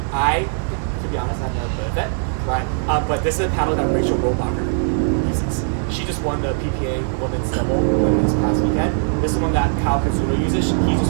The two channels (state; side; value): silent; left; digital silence